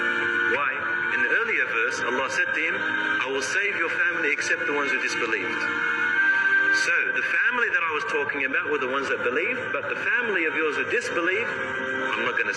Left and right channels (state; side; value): identical; both; correlation 1.00